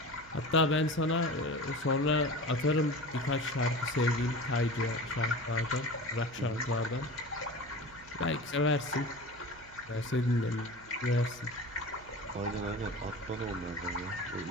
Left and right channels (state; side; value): noise; right; hum, 22 dB below the sound